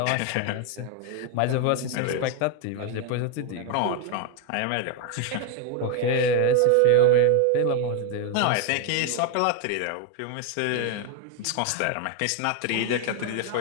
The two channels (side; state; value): both; different; correlation 0.01